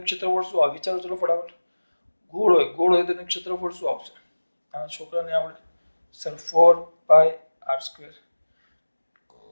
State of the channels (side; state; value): both; inverted; correlation -1.00